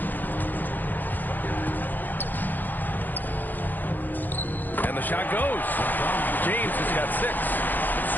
And the shot goes. James has got 6.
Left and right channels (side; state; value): right; late; 0.087 ms